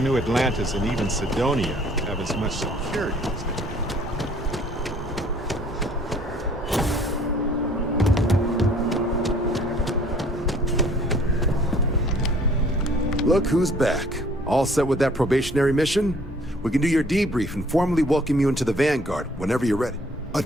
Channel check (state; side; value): normal; both; correlation 0.56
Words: Atlantis and even Sidonia have as much security as they do. Look who's back. All set with that probationary mission? We can do your debrief and formally welcome you into the Vanguard whenever you're ready. A